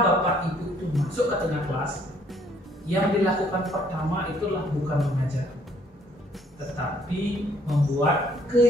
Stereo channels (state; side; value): normal; both; correlation 0.64